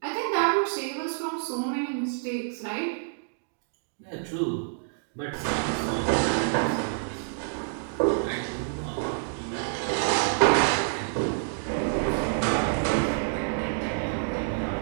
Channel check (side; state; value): left; silent; digital silence